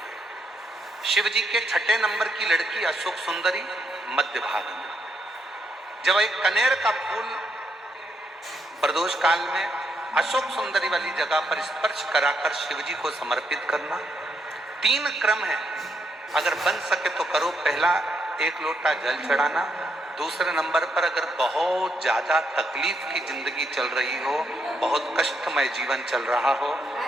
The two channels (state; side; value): normal; both; correlation 0.77